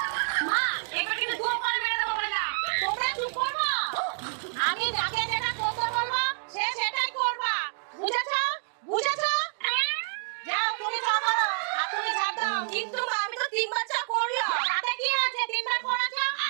মা, এবার কিন্তু দুটো করে মেরে দেবো বললাম। তোমরা চুপ করবা। আমি যাকে যেটা করতে বলবো সে সেটাই করবা। বুঝেছো? বুঝেছো? যাও তুমি চা করো আর তুমি ঝাড় দাও। কিন্তু মা, আমি তো 3বার চা করলাম। তাতে কি আছে? 3বার করেছো,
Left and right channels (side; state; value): left; silent; digital silence